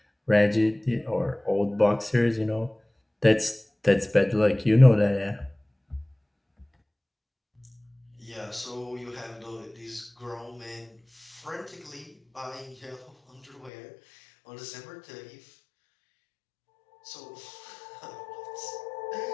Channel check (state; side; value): drops out; right; at 13.7 s